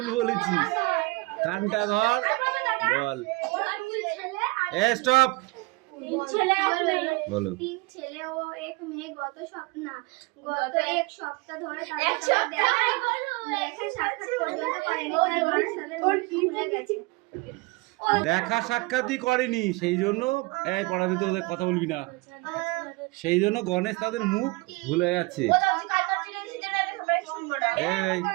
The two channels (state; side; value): quieter; left; 25.1 dB